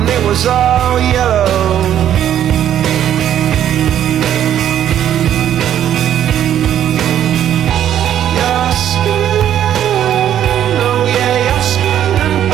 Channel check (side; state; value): left; quieter; 10.6 dB